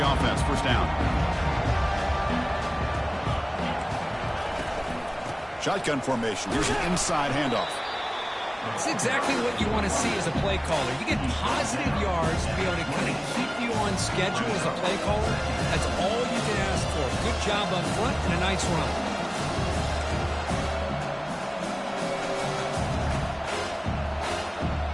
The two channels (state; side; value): identical; both; correlation 1.00